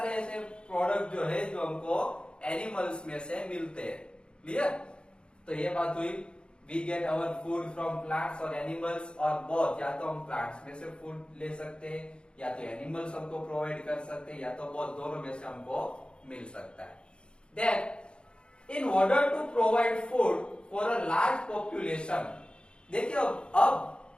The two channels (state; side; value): late; right; 0.054 ms